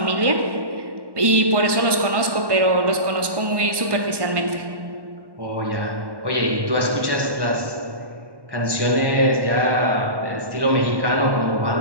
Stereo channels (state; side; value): late; left; 1.1 ms